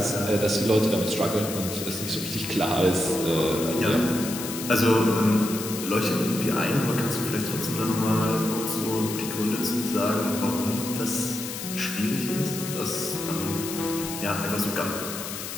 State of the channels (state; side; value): noise; left; hiss, 7 dB below the sound